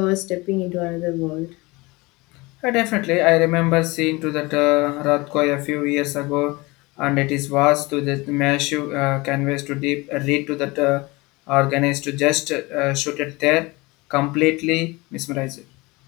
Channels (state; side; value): quieter; right; 23.7 dB